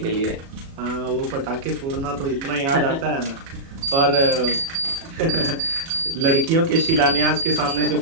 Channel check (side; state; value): left; late; 36 ms